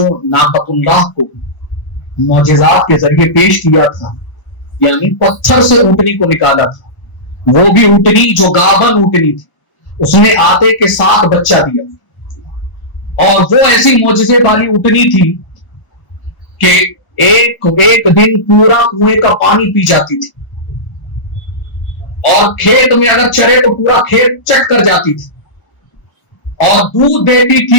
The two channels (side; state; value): right; late; 1.0 ms